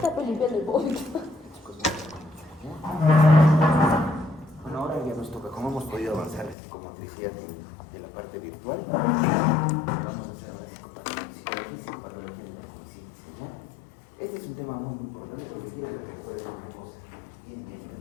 limpiando el vómito. Bueno, ahora ya nos toca, como hemos podido avanzar la psicomotricidad de la parte virtual, vamos a hacer ahora psicología y psicopatología de la conciencia, ¿ya? Este es un tema muy importante porque quiero que recuerden una cosa, bien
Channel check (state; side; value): drops out; right; at 6.6 s